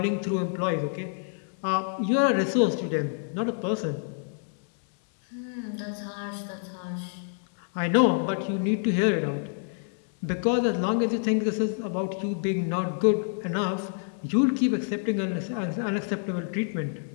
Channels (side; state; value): right; silent; 60 dB below the other